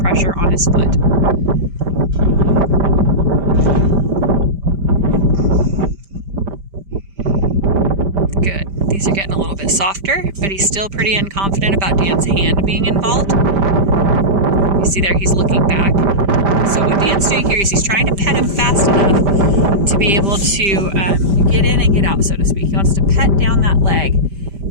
on his foot. Good. These are getting a little bit softer, but he's still pretty unconfident about Dan's hand being involved. You see there, he's looking back. So what Dan's doing here is he's trying to pet him fast enough to be able to get in and get out, so to speak. He wants to pet down that leg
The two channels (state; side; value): late; left; 5.1 ms